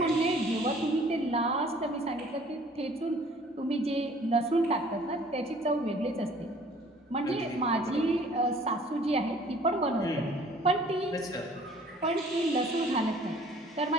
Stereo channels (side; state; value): both; normal; correlation 0.54